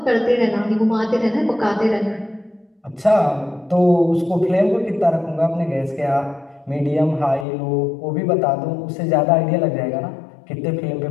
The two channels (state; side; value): drops out; right; at 7.5 s